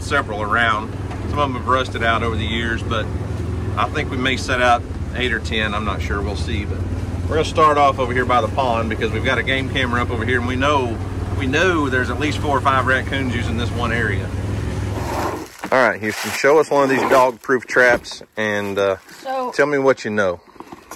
several around. Some of them have rusted out over the years, but I think we may set out 8 or 10. I'm not sure. We'll see. But we're going to start off over here by the pond because we've got a game camera up over here, and we know there's at least 4 or 5 raccoons using this one area. All right, Houston, show us one of these dog-proof traps and tell me what you know.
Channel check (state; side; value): identical; both; correlation 1.00